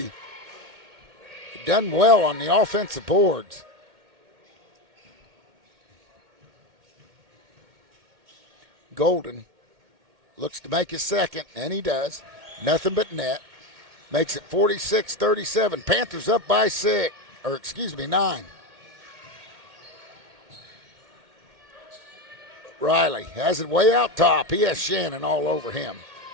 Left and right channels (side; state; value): left; late; 2.1 ms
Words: done well on the offensive boards. Golden looks to make his second, and he does. Nothing but net. Makes it 46-37. Panthers up by 9. Riley has it way out top. He has Shannon all over him.